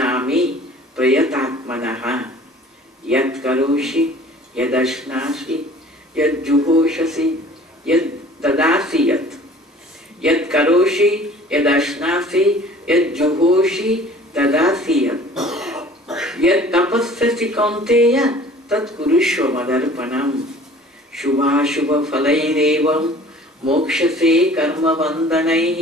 प्रयतात्मनः। यत् करोषि यदश्नासि यज्जुहोषसि यद्ददासि यत् करोषि यदश्नासि यज्जुहोषि ददासि यत् तपस्यसि कौन्तेय तत् कुरुष्व मदर्पणम्। शुभाशुभ फलैरेवं मोक्षसे कर्म बन्धनैः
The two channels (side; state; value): both; normal; correlation 0.49